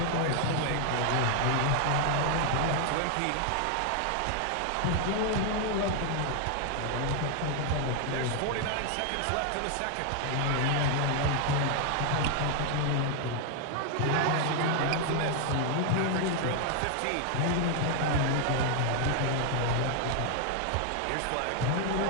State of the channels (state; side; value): different; both; correlation 0.00